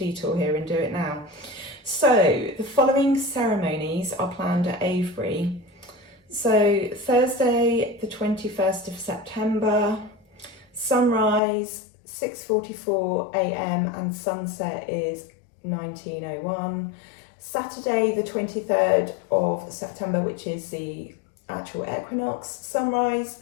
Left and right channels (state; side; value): drops out; right; at 11.4 s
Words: here and do it now. So the following ceremonies are planned at Avebury. So Thursday, the 21st of September, sunrise 6:44 a.m. and sunset is 19:01. Saturday, the 23rd of September, which is the actual equinox, sunrise